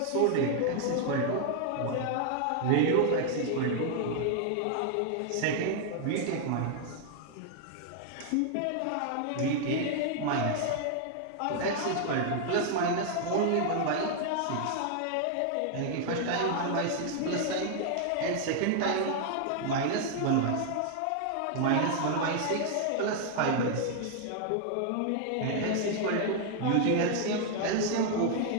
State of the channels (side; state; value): both; different; correlation 0.00